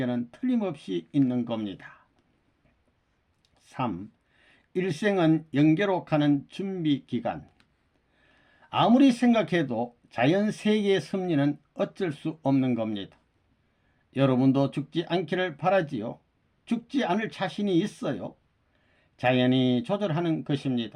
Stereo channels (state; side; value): identical; both; correlation 1.00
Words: 틀림없이 있는 겁니다. 3. 일생은 영계로 가는 준비기간. 아무리 생각해도 자연세계의 섭리는 어쩔 수 없는 겁니다. 여러분도 죽지 않기를 바라지요. 죽지 않을 자신이 있어요. 자연이 조절하는